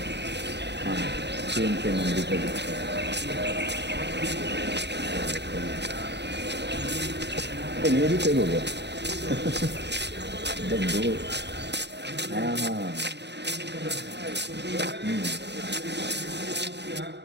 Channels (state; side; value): late; left; 0.50 ms